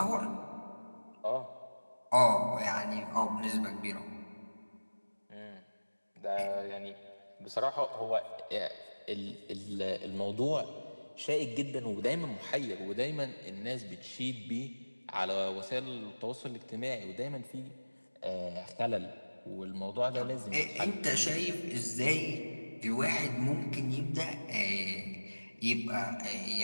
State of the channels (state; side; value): inverted; both; correlation -1.00